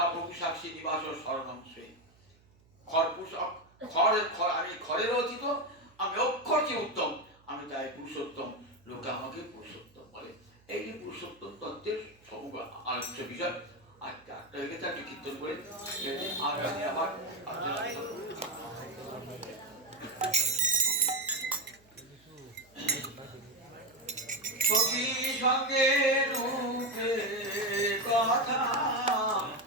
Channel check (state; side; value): noise; right; hum, 30 dB below the sound